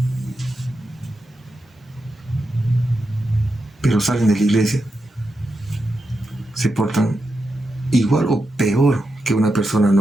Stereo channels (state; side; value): normal; both; correlation 0.87